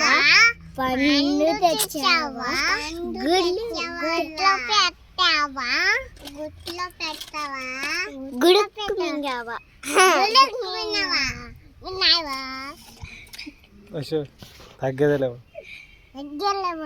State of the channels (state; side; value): identical; both; correlation 1.00